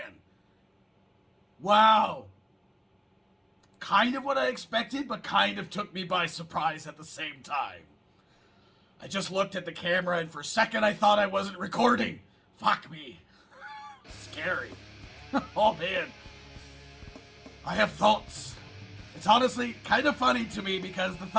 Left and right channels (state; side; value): identical; both; correlation 1.00